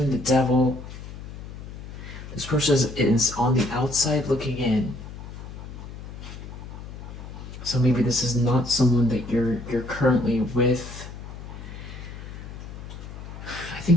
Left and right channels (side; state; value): left; noise; hum, 11 dB below the sound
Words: the devil. This person is on the outside looking in. So maybe this is not someone that you're currently with. I